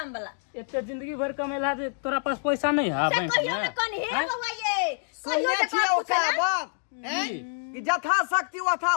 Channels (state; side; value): silent; right; digital silence